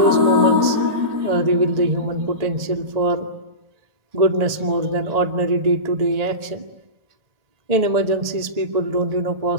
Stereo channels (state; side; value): late; left; 1.8 ms